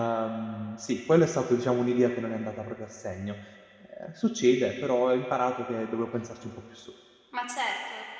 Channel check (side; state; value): both; identical; correlation 1.00